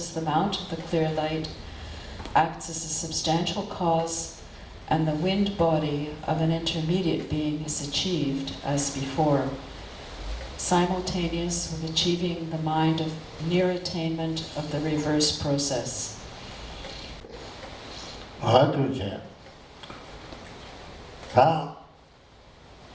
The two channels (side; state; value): both; identical; correlation 1.00